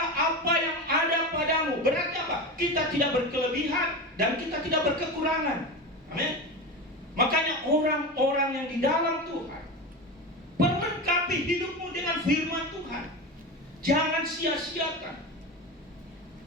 apa yang ada padamu. Berarti apa? Kita tidak berkelebihan dan kita tidak berkekurangan. Amin. Makanya orang-orang yang di dalam Tuhan, perlengkapi hidupmu dengan firman Tuhan. Jangan sia-siakan.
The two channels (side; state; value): both; normal; correlation 0.23